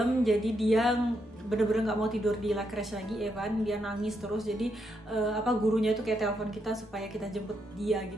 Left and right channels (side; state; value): both; normal; correlation 0.79